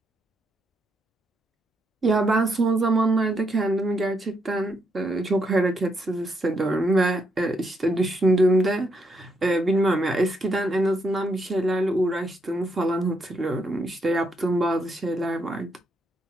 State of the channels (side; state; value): both; normal; correlation 0.77